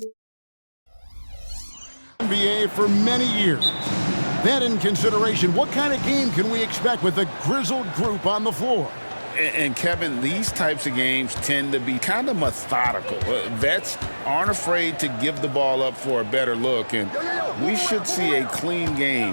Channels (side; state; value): both; inverted; correlation -1.00